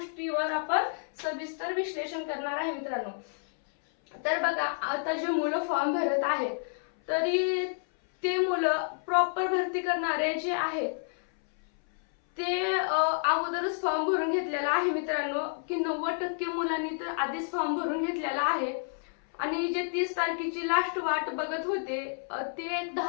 आपण सविस्तर विश्लेषण करणार आहे मित्रांनो। तर बघा, आता जे मुलं फॉर्म भरत आहेत तरी ते मुलं प्रॉपर भरती करणारे जे आहेत ते अगोदरच फॉर्म भरून घेतलेला आहे मित्रांनो, की 90% मुलांनी तर आधीच फॉर्म भरून घेतलेला आहे आणि जे 30 तारखेची लास्ट वाट बघत होते ते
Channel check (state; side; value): silent; right; 58 dB below the other